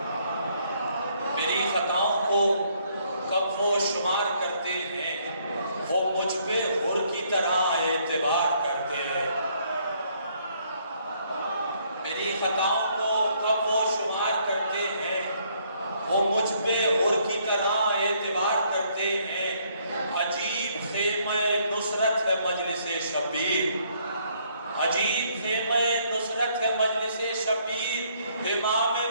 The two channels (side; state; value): both; inverted; correlation -0.68